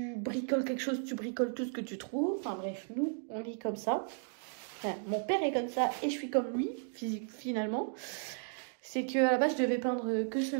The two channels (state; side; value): silent; left; 55 dB below the other